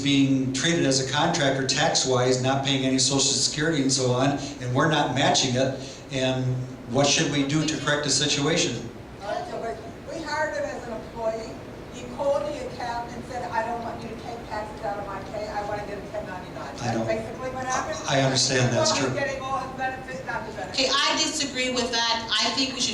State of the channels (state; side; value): identical; both; correlation 1.00